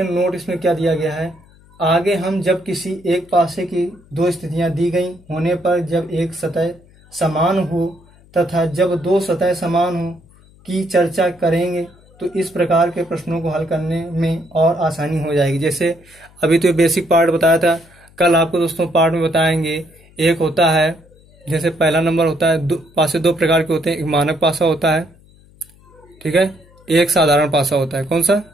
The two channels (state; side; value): noise; left; hum, 27 dB below the sound